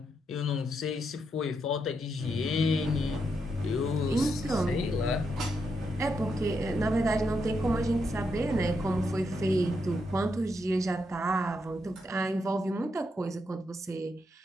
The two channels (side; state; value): both; normal; correlation 0.81